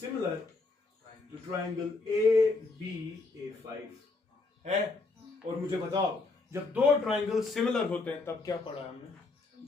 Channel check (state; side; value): quieter; right; 3.6 dB